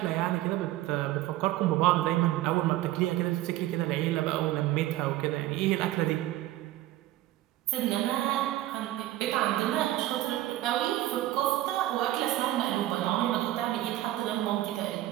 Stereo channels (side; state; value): left; quieter; 15.3 dB